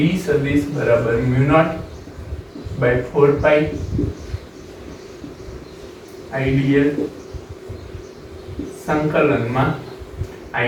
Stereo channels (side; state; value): both; identical; correlation 1.00